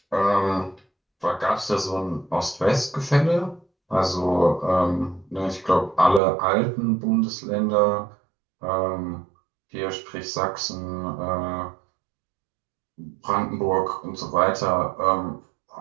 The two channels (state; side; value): drops out; left; at 6.2 s